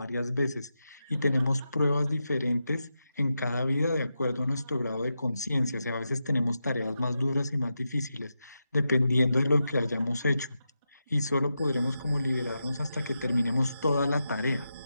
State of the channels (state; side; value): inverted; both; correlation -0.88